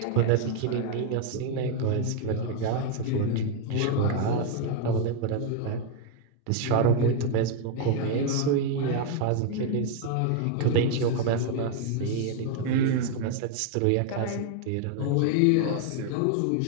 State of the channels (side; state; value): both; different; correlation 0.01